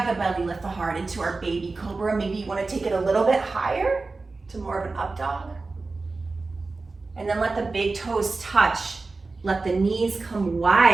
the belly, lift the heart into our baby cobra. Maybe you want to take it a little bit higher to more of an up dog. And then let the big toes touch. Let the knees come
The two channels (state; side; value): quieter; left; 3.7 dB